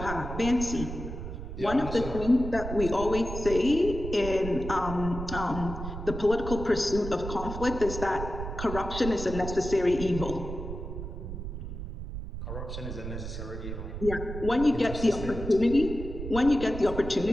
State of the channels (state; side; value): noise; right; rumble, 7 dB below the sound